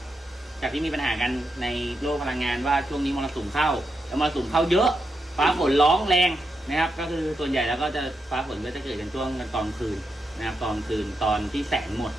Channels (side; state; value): both; normal; correlation 0.84